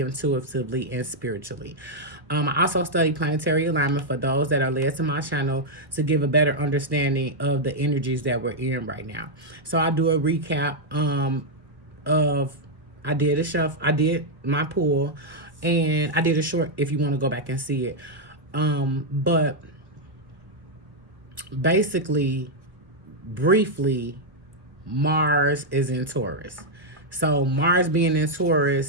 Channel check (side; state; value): left; late; 1.1 ms